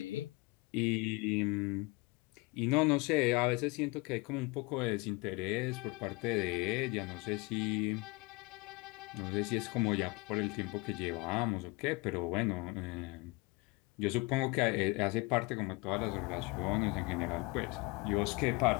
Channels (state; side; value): quieter; right; 25.4 dB